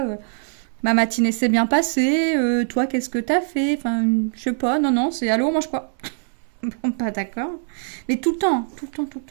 Ma matinée s'est bien passée. Toi, qu'est-ce que t'as fait? Enfin, je sais pas. Non, non, c'est allô, on mange quoi? Bon, pas d'accord. Mais tout le temps, tout le temps, tout le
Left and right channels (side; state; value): left; silent; digital silence